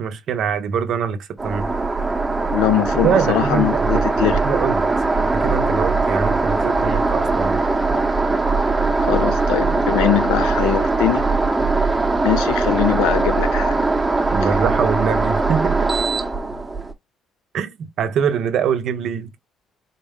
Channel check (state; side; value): normal; both; correlation 0.72